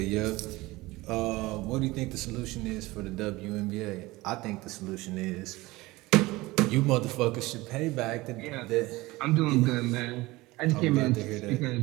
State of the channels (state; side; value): quieter; left; 20.5 dB